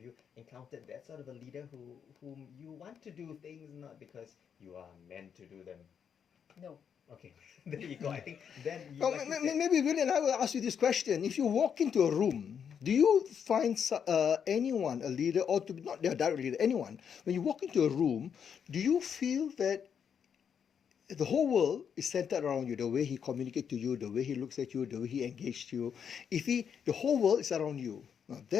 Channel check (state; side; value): quieter; right; 7.6 dB